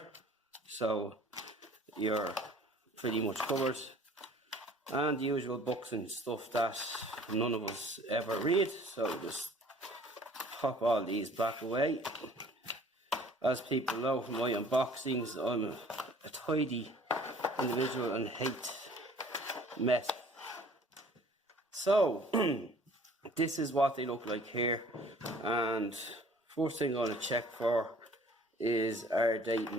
so you're pretty much covered. And the usual books and stuff that none of us ever read, so just pop all these back away. As people know from my unboxings, I'm a tidy individual and hate mess. So this is what they look like here, and first thing I'm going to check for is, are they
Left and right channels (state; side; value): normal; both; correlation 0.52